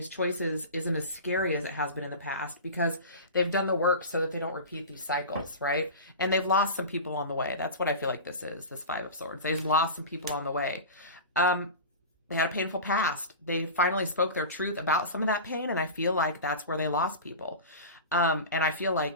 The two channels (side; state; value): both; inverted; correlation -0.30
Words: choices isn't as scary as it has been in the past because they've done the work so that they don't repeat these cycles, right? And they've lost some people on the way. That's what I feel like this is, this Five of Swords. They've lost some people on the way. They had a painful past. They finally spoke their truth about some of that pain, and I feel like that's where they lost people. And I feel